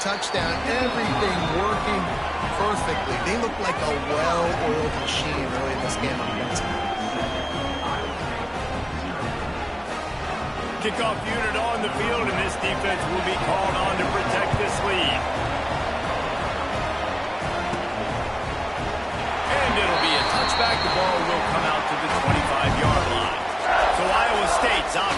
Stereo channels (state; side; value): identical; both; correlation 1.00